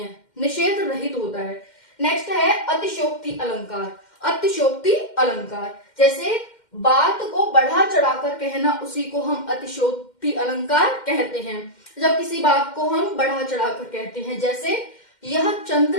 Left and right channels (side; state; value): right; late; 2.1 ms